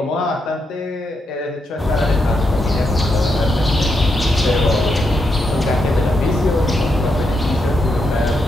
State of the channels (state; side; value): normal; both; correlation 0.82